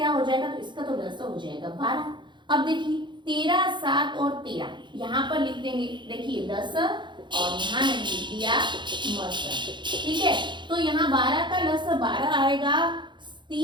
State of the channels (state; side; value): late; left; 0.23 ms